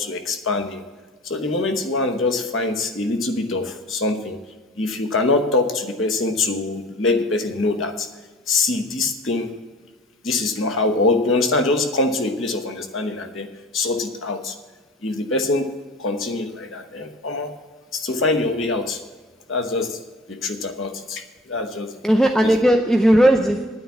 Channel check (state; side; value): normal; both; correlation 0.46